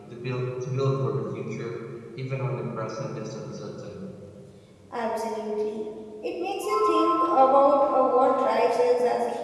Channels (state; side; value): identical; both; correlation 1.00